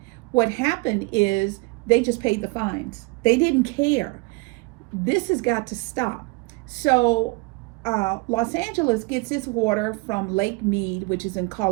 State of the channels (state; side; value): quieter; left; 27.1 dB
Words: what happened is they just paid the fines. They didn't care. This has got to stop. So Los Angeles gets its water from Lake Mead, which is in